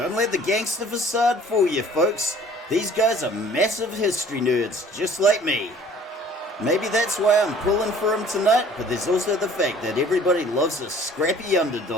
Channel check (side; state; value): both; normal; correlation 0.51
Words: let the gangster facade fool you, folks. These guys are massive history nerds, just like me. Maybe that's why I'm pulling for them tonight, but there's also the fact that everybody loves a scrappy